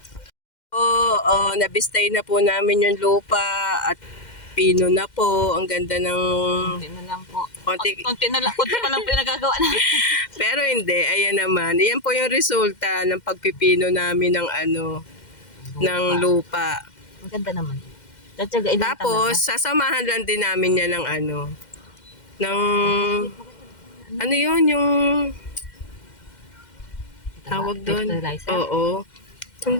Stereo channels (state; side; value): late; right; 2.1 ms